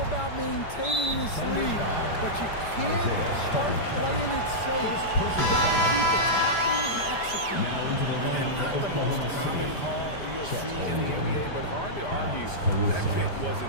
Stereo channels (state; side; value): late; right; 5.0 ms